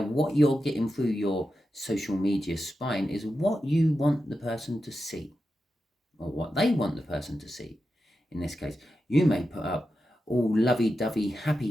what you're getting through your social media spine is what you want the person to see, or what they want the person to see in this case. You may put up all lovey-dovey,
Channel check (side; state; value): both; normal; correlation 0.90